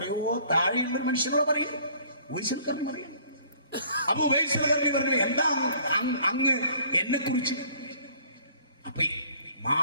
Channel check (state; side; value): inverted; both; correlation -0.56